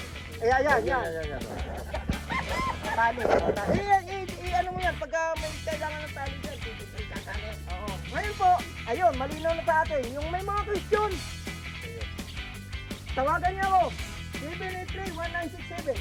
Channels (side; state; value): both; identical; correlation 1.00